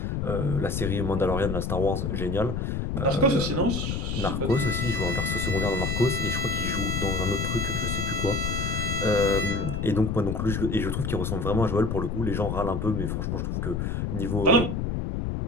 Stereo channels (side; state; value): left; noise; rumble, 1 dB below the sound